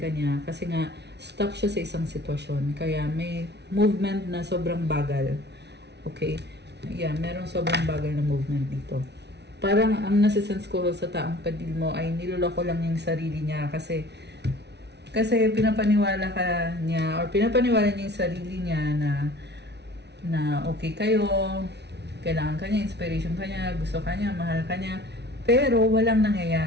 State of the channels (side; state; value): left; late; 0.50 ms